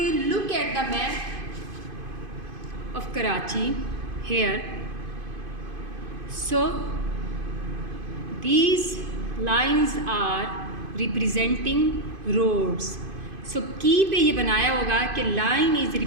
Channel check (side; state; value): left; late; 2.5 ms